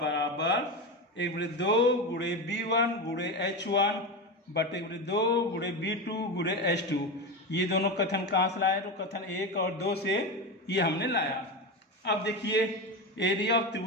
1/2 गुणे B1 गुणे H1 बटे 1/2 गुणे B2 गुणे H2। ये दोनों कथन कहाँ से लाए? तो कथन 1 और 2 से ये हमने लाया। अब देखिए एरिया ऑफ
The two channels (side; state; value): both; normal; correlation 0.19